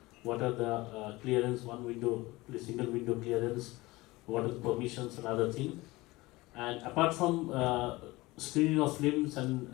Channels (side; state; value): right; quieter; 20.8 dB